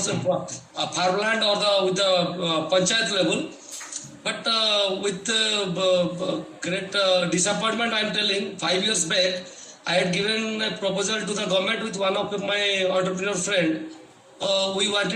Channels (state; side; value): identical; both; correlation 1.00